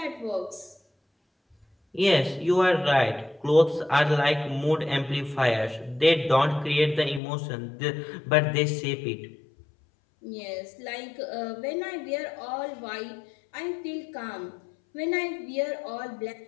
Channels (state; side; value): drops out; right; at 7.2 s